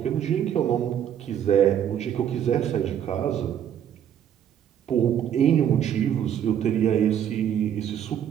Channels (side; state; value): left; quieter; 9.6 dB